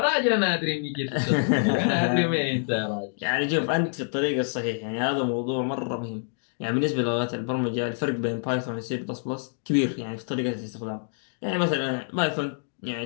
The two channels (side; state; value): right; silent; digital silence